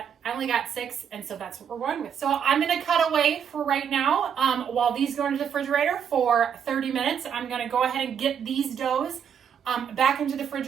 I only got 6, and so that's what we're going with. So I'm gonna cut away for right now. While these go into the refrigerator for 30 minutes, I'm gonna go ahead and get these doughs back into the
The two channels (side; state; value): left; quieter; 8.0 dB